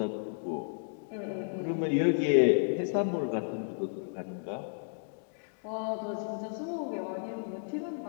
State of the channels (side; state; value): right; silent; digital silence